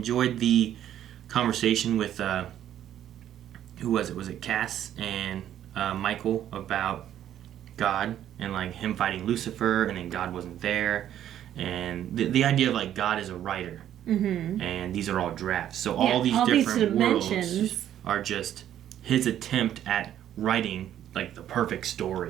the conversation with who was it? Was it Cass and Michael about God and like him fighting Lucifer, and then God wasn't there, and the idea of like God is a writer. Mm-hmm. And these are all drafts. So all these different worlds are just his attempt at writing like the perfect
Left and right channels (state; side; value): quieter; left; 11.1 dB